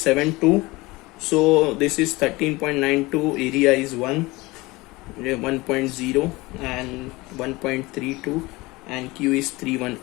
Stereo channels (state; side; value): quieter; right; 21.9 dB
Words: So this is 13.92, area is 1.0 and 1.32 and Q is